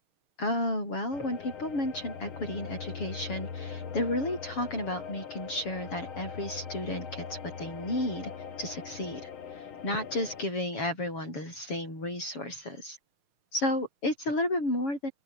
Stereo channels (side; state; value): right; late; 7.2 ms